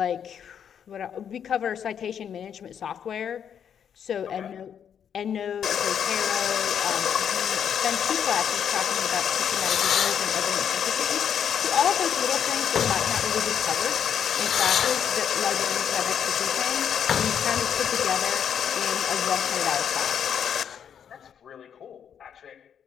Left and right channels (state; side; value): quieter; right; 8.4 dB